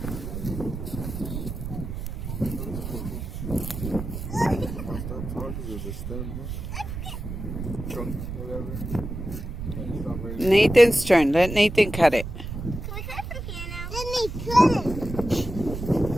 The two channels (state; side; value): noise; right; rumble, 7 dB below the sound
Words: Nathan's turn. Let Nathan cut it. Can we cut it from here now? Let me cut